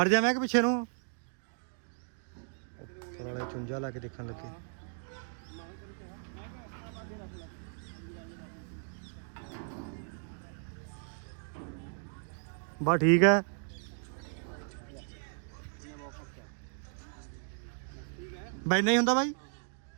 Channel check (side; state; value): left; silent; digital silence